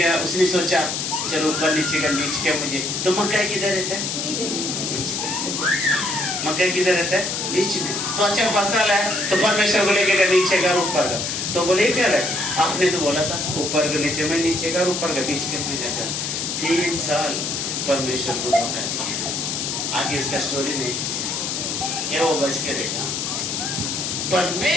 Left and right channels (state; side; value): noise; left; hiss, 2 dB below the sound